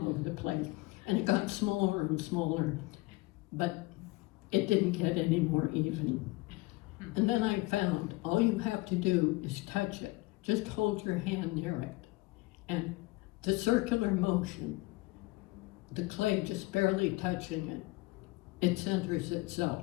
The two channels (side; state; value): right; quieter; 21.8 dB